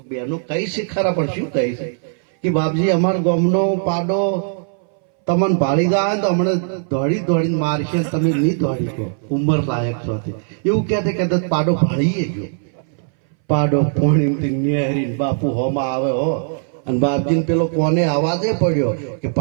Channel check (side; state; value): left; silent; 63 dB below the other